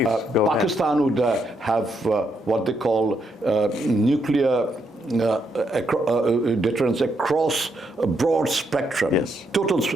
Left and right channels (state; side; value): normal; both; correlation 0.78